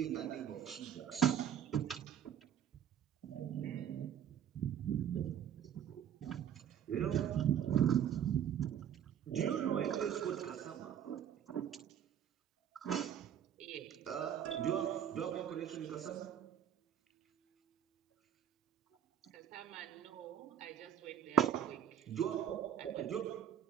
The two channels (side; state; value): left; quieter; 9.3 dB